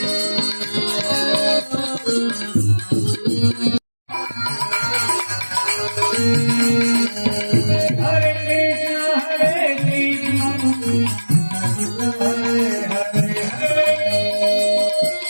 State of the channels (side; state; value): both; inverted; correlation -1.00